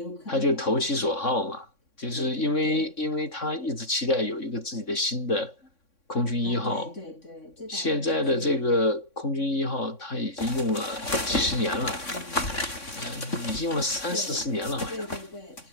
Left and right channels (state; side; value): late; right; 3.6 ms